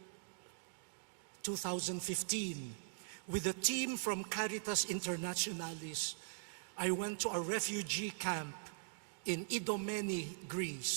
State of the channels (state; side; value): silent; left; digital silence